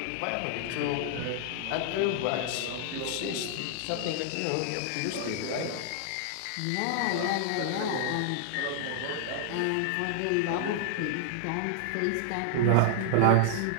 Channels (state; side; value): different; both; correlation -0.01